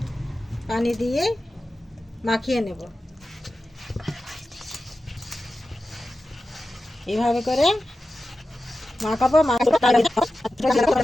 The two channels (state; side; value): normal; both; correlation 0.93